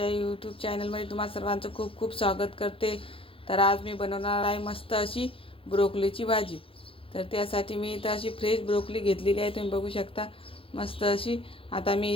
यूट्यूब चॅनलमध्ये तुम्हा सर्वांचं खूप खूप स्वागत करते। तर आज मी बनवणार आहे मस्त अशी ब्रोकलीची भाजी। तर त्यासाठी मी इथं अशी फ्रेश ब्रोकली घेतलेली आहे, तुम्ही बघू शकता मस्त अशी। आता मी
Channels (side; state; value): right; late; 0.27 ms